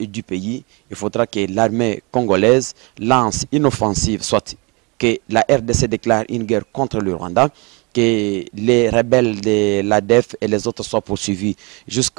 pays, il faudra que l'armée congolaise lance une offensive, soit que la RDC déclare une guerre contre le Rwanda, que les rebelles de l'ADF et les autres soient poursuivis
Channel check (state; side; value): quieter; left; 28.9 dB